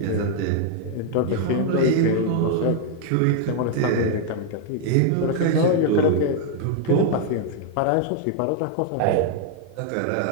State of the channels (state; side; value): different; both; correlation 0.00